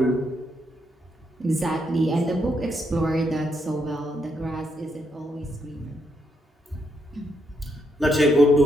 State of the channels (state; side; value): normal; both; correlation 0.78